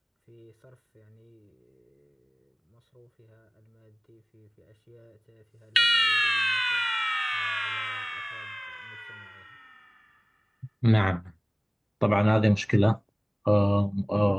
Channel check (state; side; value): identical; both; correlation 1.00